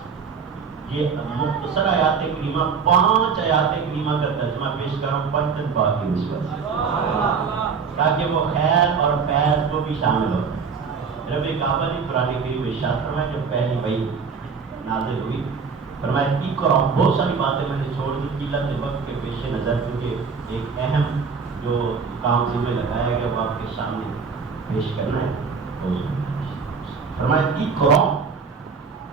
یہ مختصر آیات کریمہ، 5 آیات کریمہ کا ترجمہ پیش کر رہا ہوں پنجن پاک کی نسبت سے، تاکہ وہ خیر اور فیض کو بھی شامل ہو۔ رب کعبہ نے قرآن کریم میں ارشاد فرمایا جب پہلی وحی نازل ہوئی، فرمایا اقرا، بہت ساری باتیں میں نے چھوڑ دی قلت وقت کے پیش نظر، کیونکہ ایک اہم جو کام ذمہ لگایا گیا وہ آپ کے سامنے پیش کرنا ہے۔ فرمایا اقرا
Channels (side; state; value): left; quieter; 5.6 dB